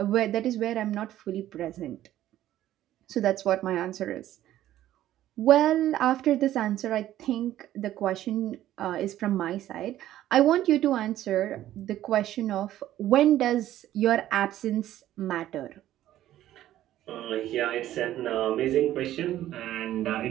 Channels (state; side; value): quieter; left; 13.2 dB